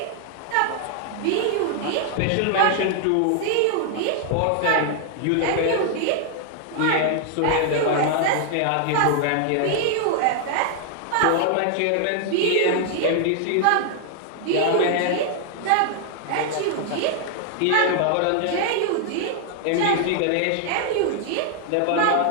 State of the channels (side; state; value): both; different; correlation 0.00